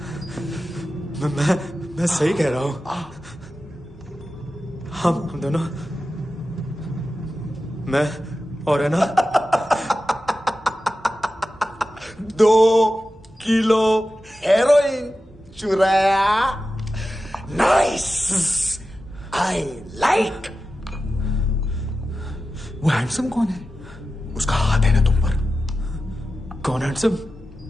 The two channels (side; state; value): both; normal; correlation 0.93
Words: मैं सही कह रहा हूं। हम दोनों, मैं और है ना 2 किलो हेरोइन चुराया। Nice, I like. वो हैंडसम कौन है? उसका हाथ है ना तुम पर? कौन हैंडसम?